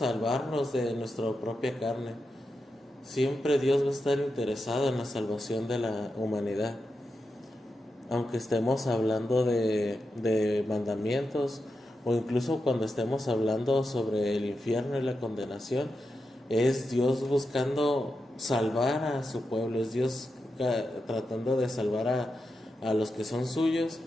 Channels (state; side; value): normal; both; correlation 0.88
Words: de nuestra propia carne. Siempre Dios va a estar interesado en la salvación de la humanidad, aunque estemos hablando de mandamientos, o incluso cuando estemos hablando sobre el infierno y la condenación, es Dios buscando salvar a su pueblo, es Dios tratando de salvar a los que son suyos,